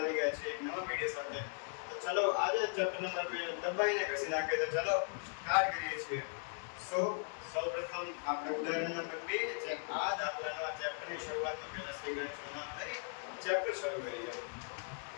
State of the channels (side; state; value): right; silent; 52 dB below the other